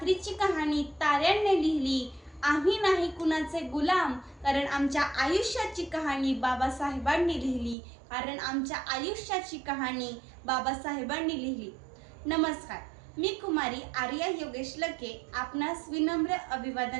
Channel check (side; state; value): left; drops out; at 7.8 s